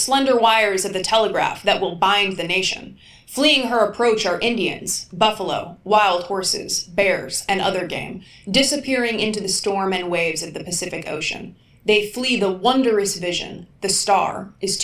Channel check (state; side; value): identical; both; correlation 1.00